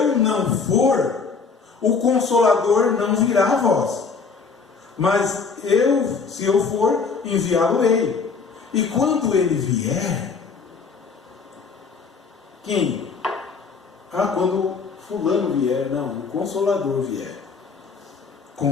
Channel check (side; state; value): right; quieter; 5.1 dB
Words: não for, o Consolador não virá a vós. Mas se eu for, enviá-lo-ei. E quando ele vier, quem? Quando fulano vier, não, o Consolador vier,